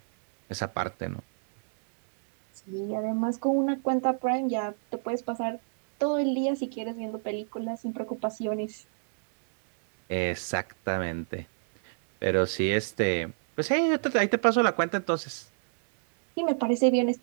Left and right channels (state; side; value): silent; left; 59 dB below the other